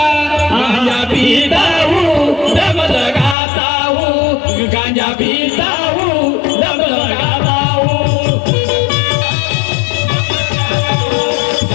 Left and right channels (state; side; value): drops out; right; at 3.4 s